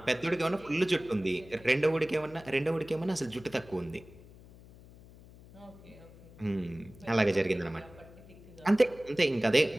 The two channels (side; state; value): left; noise; hum, 21 dB below the sound